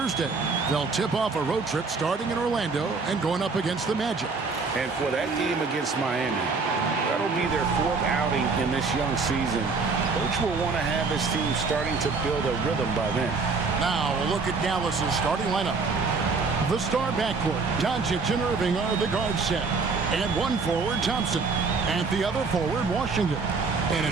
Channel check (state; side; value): quieter; left; 4.5 dB